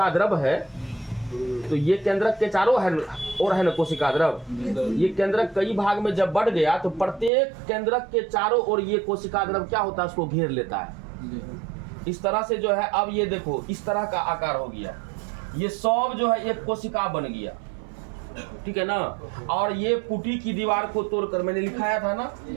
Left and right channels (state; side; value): drops out; left; at 7.3 s